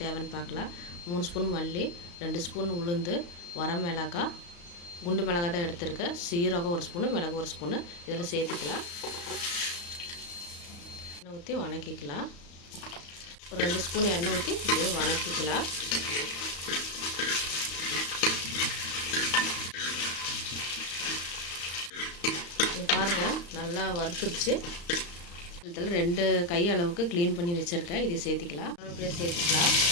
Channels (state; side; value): late; right; 35 ms